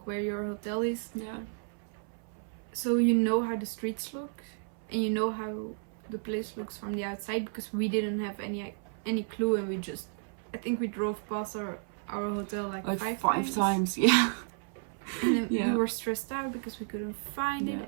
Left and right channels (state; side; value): silent; left; 56 dB below the other